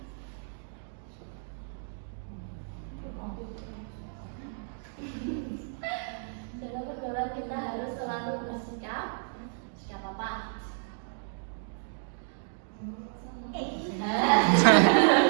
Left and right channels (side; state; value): left; silent; digital silence